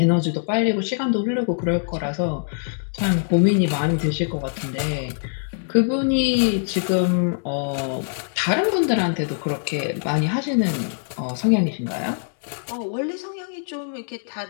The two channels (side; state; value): right; silent; digital silence